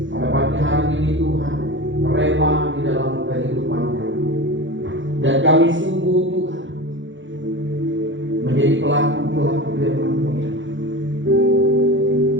pada pagi hari ini Tuhan rema di dalam kehidupan kami. Dan kami sungguh Tuhan menjadi pelaku-pelaku firman-Mu ya.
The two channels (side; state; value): left; late; 0.55 ms